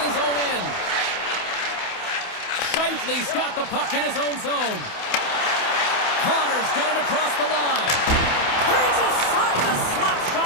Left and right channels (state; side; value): late; right; 28 ms